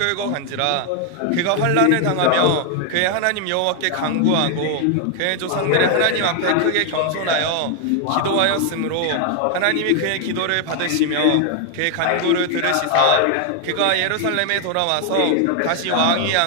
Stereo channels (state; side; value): different; both; correlation 0.00